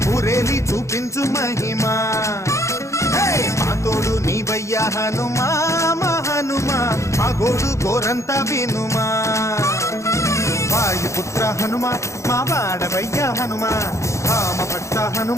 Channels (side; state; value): right; late; 0.14 ms